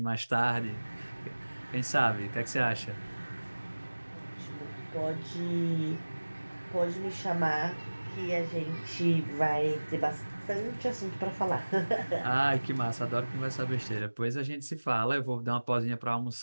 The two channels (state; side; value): inverted; both; correlation -1.00